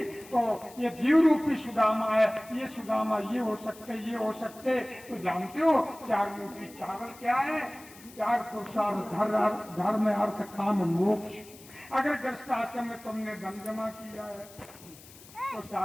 तो ये जीव रूपी सुदामा है। ये सुदामा ये हो सकते, ये हो सकते। तो जानते हो चार मूर्ति चावल क्या है? चार पुरुषार्थ, धर्म, अर्थ, काम, मोक्ष। अगर गृहस्थ आश्रम में तुमने धन जमा किया है तो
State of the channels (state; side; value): noise; left; hiss, 21 dB below the sound